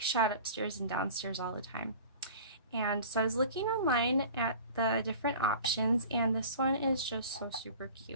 shot upstairs and downstairs all the time. And so I was looking online at the different options, and this one is just so super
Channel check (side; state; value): both; inverted; correlation -0.41